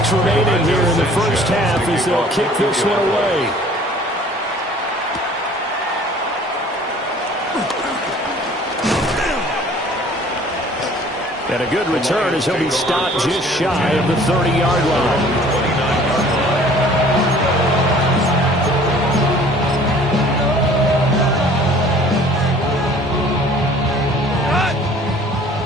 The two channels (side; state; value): both; normal; correlation 0.51